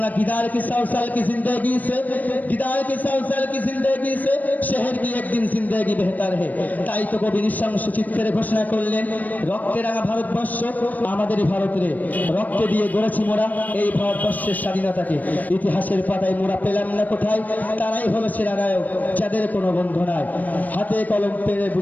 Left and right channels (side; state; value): right; late; 0.081 ms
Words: गिदार की 100 साल की जिंदगी से शहर की एक दिन जिंदगी बेहतर है। তাই তো কবি নিঃশংস চিত্রে ঘোষণা করলেন, রক্তে রাঙা ভারতবর্ষ আমাদেরই ভারত রে, রক্তে দিয়ে গড়েছি মোরা এই ভারতবর্ষের স্বাধীনতাকে, ইতিহাসের পাতায় মোরা পেলাম না কোথায়, তারাই হলো সেরা নায়ক যাদের কোনো বন্ধু নাই, হাতে কলম পেরে